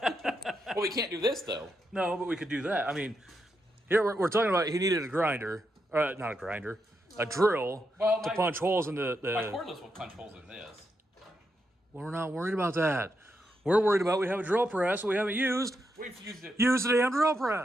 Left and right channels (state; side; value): normal; both; correlation 0.83